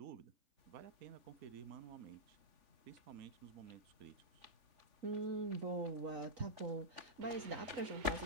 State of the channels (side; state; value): left; late; 3.5 ms